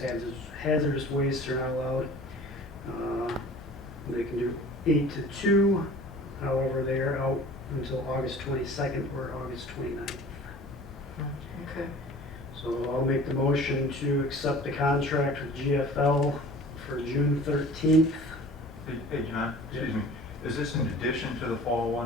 hazardous wastes are not allowed. They can do 8 to 2, however they are out until August 22nd or August 29th. Okay. So I'll make the motion to accept the contract with GFL for June 13th. Hey, John, excuse me, is this in addition to the fall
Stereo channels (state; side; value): normal; both; correlation 0.44